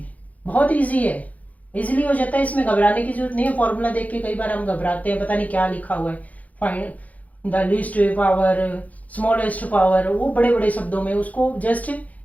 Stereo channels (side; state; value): right; late; 0.074 ms